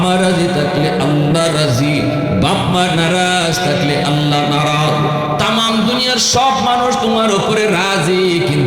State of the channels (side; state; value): both; identical; correlation 1.00